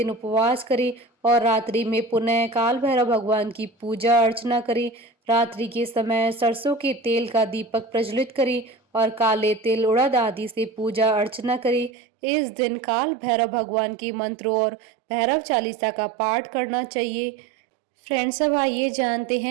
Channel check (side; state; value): left; drops out; at 11.9 s